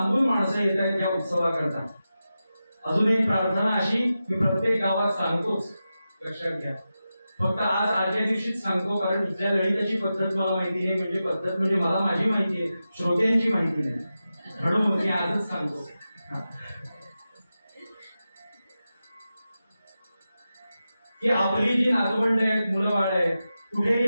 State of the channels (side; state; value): both; inverted; correlation -0.92